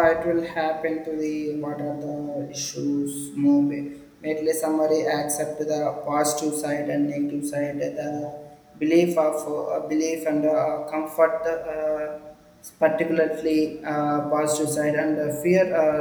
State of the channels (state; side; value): identical; both; correlation 1.00